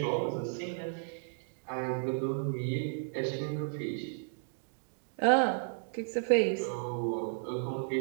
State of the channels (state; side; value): silent; left; digital silence